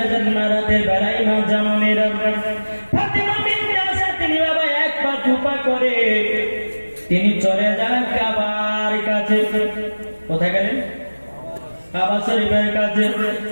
যান না, রাতে বেড়াই মা জামানেরা। ফাতেমা বিনতে আসাদ তিনি বাবা এক পা দুপা করে তিনি চলে যান কাবার কাছে। কোথায় গেলেন? কাবা শরীফের কাছে।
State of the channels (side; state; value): both; inverted; correlation -1.00